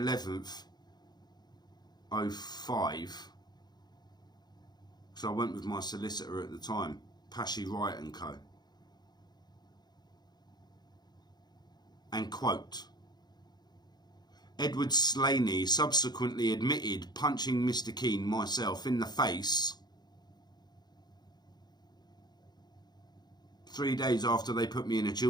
05? So I went with my solicitor at the time, Pashy Wright and Co. And quote, Edward Slaney subsequently admitted punching Mr. Keane, myself, in the face 3 days after they put me in a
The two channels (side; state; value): right; late; 0.20 ms